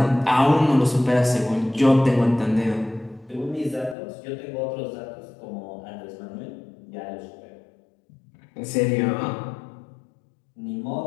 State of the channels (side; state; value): right; drops out; at 4.0 s